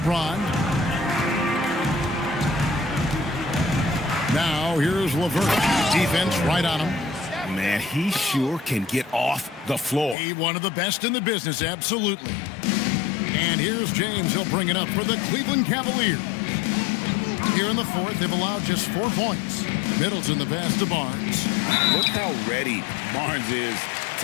Now here's LeVert. Defense right on him. Man, he sure can get off the floor. He one of the best in the business, absolutely. And here's James. He'll bring it up for the Cleveland Cavaliers. Here in the fourth, they've allowed just 4 points. Middleton the pass to Barnes. Look how ready Barnes is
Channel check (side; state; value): right; drops out; at 10.2 s